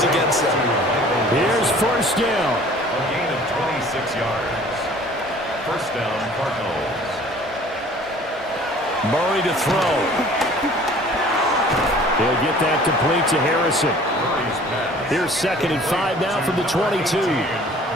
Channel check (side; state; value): both; normal; correlation 0.50